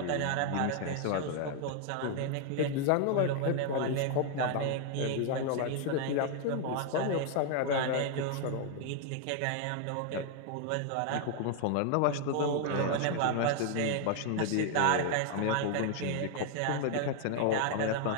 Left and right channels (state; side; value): different; both; correlation 0.00